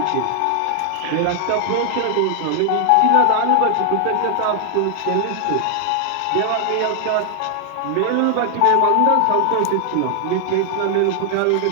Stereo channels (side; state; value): both; different; correlation 0.00